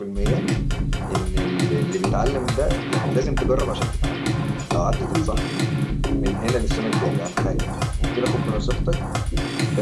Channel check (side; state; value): both; identical; correlation 1.00